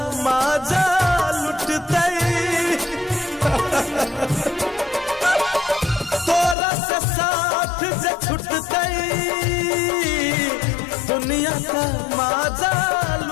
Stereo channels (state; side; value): drops out; right; at 6.6 s